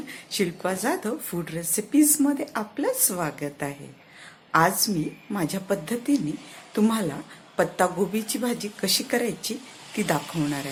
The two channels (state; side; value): identical; both; correlation 1.00